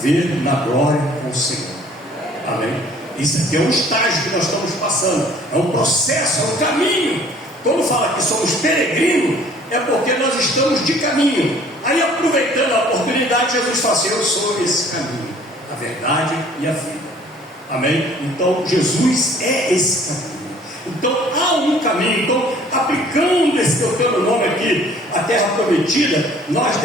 na glória com o Senhor. Amém? Isso aqui é um estágio que nós estamos passando, é um processo, é um caminho. Quando fala que somos peregrinos, é porque nós estamos de caminho. Aí, aproveitando a oportunidade, Jesus fala assim: eu sou esse caminho, a verdade e a vida. Amém? Então Jesus é esse caminho. Então há um caminho. Então, aplicando esse teu nome aqui, a terra prometida, nós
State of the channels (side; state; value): both; normal; correlation 0.54